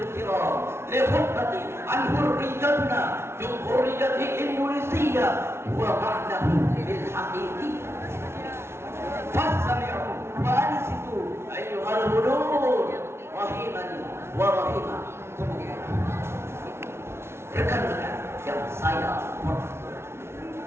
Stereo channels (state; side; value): late; left; 0.12 ms